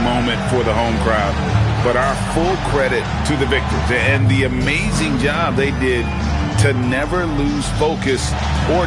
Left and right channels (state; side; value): identical; both; correlation 1.00